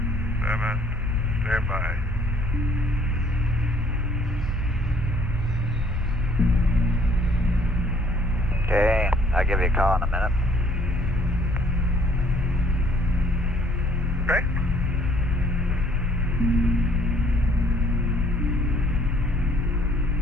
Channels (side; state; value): both; normal; correlation 0.61